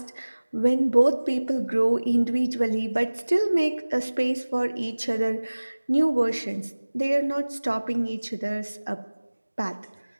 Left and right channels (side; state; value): both; inverted; correlation -1.00